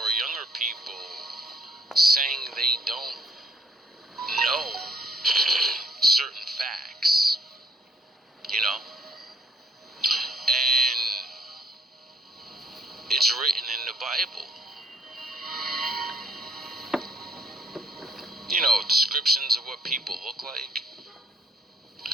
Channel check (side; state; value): both; normal; correlation 0.65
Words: younger people saying they don't know certain facts, and it's written in the Bible. Descriptions of what people look like,